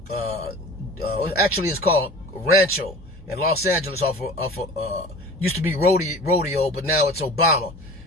Actually, it's called Rancho in Los Angeles used to be rodeo, but now it's Obama.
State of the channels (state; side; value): normal; both; correlation 0.40